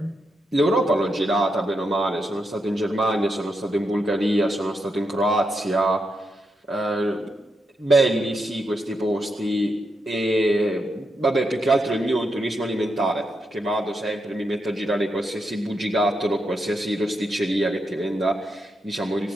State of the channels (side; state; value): both; normal; correlation 0.83